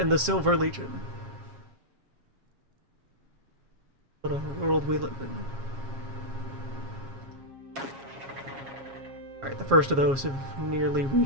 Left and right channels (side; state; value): left; late; 7.4 ms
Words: the Silver Legion. What a world we live in. Alright, the first of those have nearly